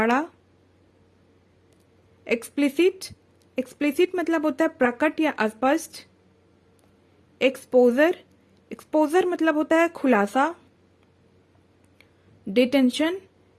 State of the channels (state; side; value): identical; both; correlation 1.00